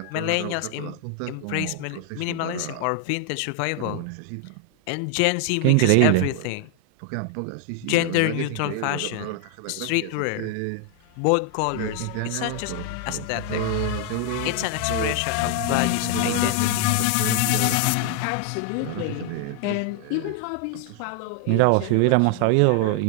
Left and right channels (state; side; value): different; both; correlation 0.00